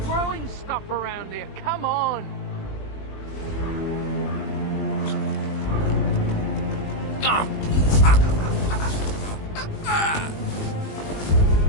throwing stuff around here? Come on!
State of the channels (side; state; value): right; late; 20 ms